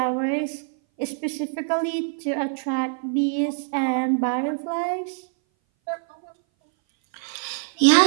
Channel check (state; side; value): silent; left; 59 dB below the other